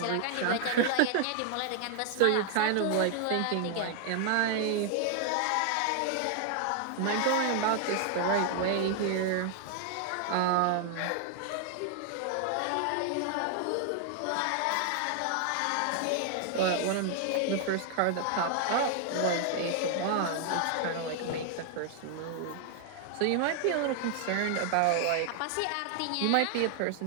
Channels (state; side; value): different; both; correlation 0.00